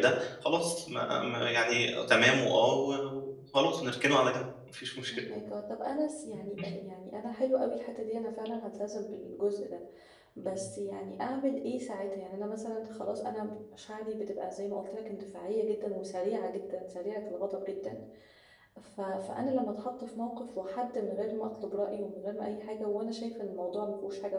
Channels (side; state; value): both; identical; correlation 1.00